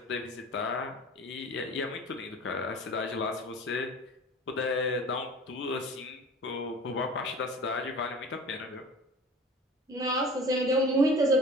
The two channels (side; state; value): both; normal; correlation 0.41